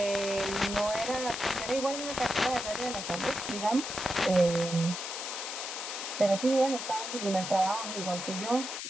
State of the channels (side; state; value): left; noise; hiss, 6 dB below the sound